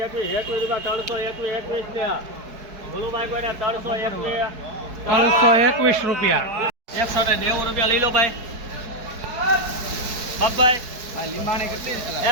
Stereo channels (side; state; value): left; late; 4.7 ms